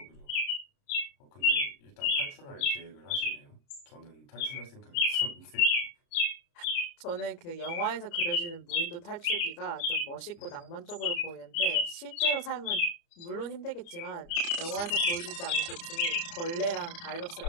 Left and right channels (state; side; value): late; right; 30 ms